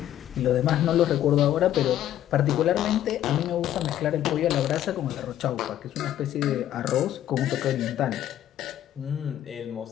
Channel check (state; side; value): quieter; right; 11.9 dB